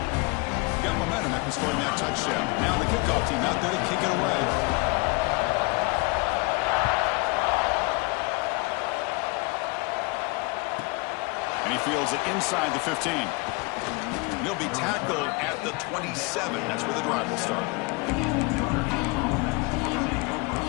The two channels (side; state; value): right; quieter; 27.4 dB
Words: Got momentum after scoring that touchdown. Now the kickoff team out there to kick it away. And he fields it inside the 15. And he'll be tackled at the 27. That's where the drive will start.